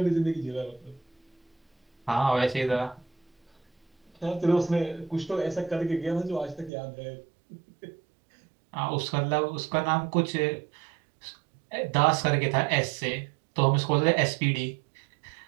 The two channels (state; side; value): drops out; left; at 6.7 s